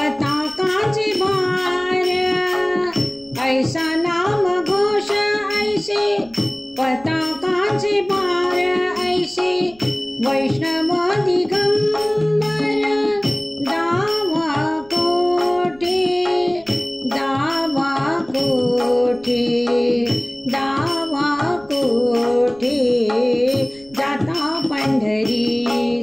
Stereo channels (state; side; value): noise; right; rumble, 26 dB below the sound